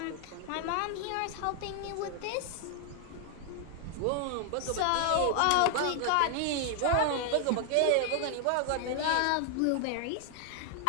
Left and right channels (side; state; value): both; different; correlation 0.00